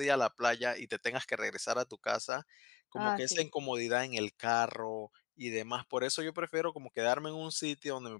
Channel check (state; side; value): drops out; right; at 2.2 s